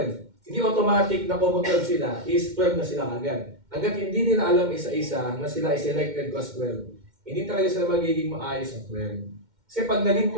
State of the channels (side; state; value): left; late; 2.1 ms